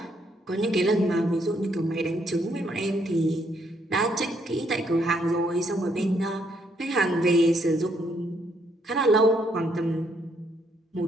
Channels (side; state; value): both; normal; correlation 0.72